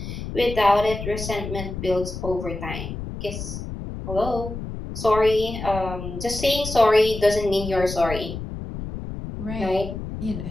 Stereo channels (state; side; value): noise; left; rumble, 7 dB below the sound